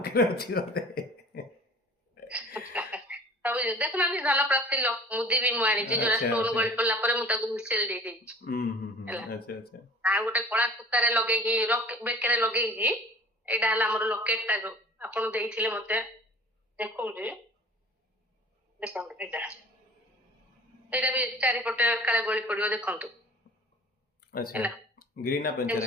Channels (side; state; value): both; normal; correlation 0.46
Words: ଅଛି ବୋଧେ। ସବୁ ଦେଖୁନାହାନ୍ତି ଧନ ପ୍ରାପ୍ତି ମୁଦି ବି ମୁଁ ଆଣିଛି ଯୋଉଟା ଆଚ୍ଛା ଷ୍ଟୋନ ଆଚ୍ଛା ଗଳି ପଡିଲା ପରେ ମୁଁ ତାକୁ ମିଶେଇ ଦେଇଦେଇଛି ହେଲା। ଆଚ୍ଛା ଆଚ୍ଛା ଆଉ ଗୋଟେ କଳା ସୂତାରେ ଲଗେଇକି ବେକରେ ଲଗେଇକି ଏଇଟା ହେଲା ଆମର ଲକେଟ ଟା ଯୋଉ ଆପଣ ଦେଇଥିଲେ ମତେ ଦେଖଉଛି ଦେଖନ୍ତୁ ଏଇଟା ବି ଚାରିପଟେ କାଳେ ଗଳି ପଡିବ ଦେଖନ୍ତୁ ଆଚ୍ଛା ହେଲା। ଗ୍ରୀନ୍ ନା ପେନ୍ସିଲ